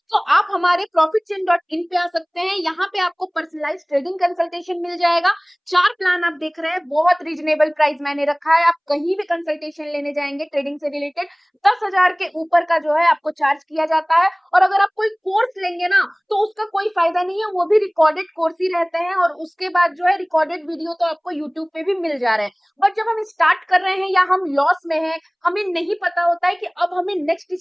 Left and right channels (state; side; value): identical; both; correlation 1.00